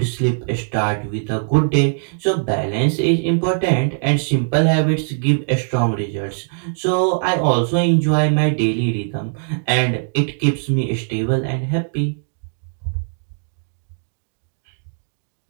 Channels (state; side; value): silent; left; digital silence